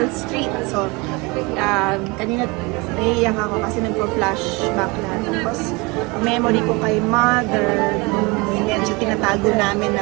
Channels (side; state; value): left; quieter; 26.2 dB